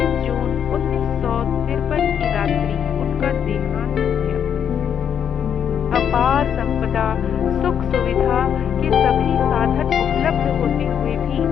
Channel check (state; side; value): quieter; right; 8.4 dB